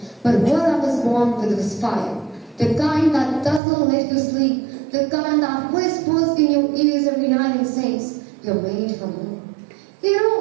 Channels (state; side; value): drops out; left; at 3.6 s